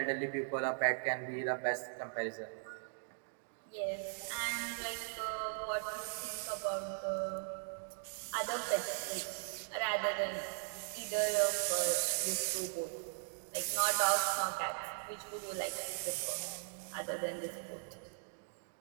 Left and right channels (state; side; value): silent; left; digital silence